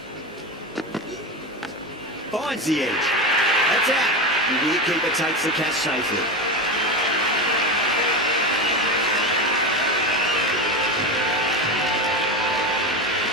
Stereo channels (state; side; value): normal; both; correlation 0.20